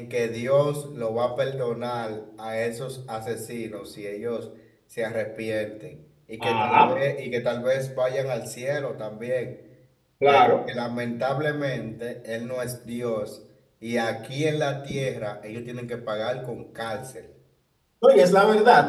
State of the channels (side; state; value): both; identical; correlation 1.00